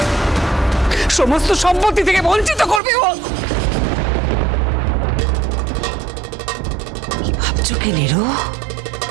সমস্ত সম্পত্তি থেকে বঞ্চিত করবে। ও কি ভাবছো কি নিরু?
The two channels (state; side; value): drops out; left; at 2.8 s